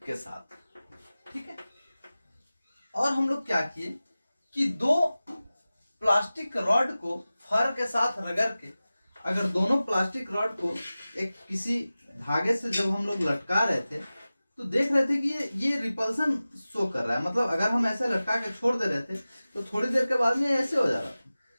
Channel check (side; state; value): both; inverted; correlation -0.97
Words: के साथ, ठीक है। और हम लोग क्या किए कि दो प्लास्टिक रॉड को फर के साथ रगड़ के, अगर दोनों प्लास्टिक रॉड को एक किसी धागे से जब हम लोग लटका रहे थे तो देख रहे थे कि ये रिपल्सन शो कर रहा है। मतलब अगर हम ऐसे लटका के छोड़ दे रहे थे तो थोड़ी देर के बाद में ऐसे हो जा रहा था।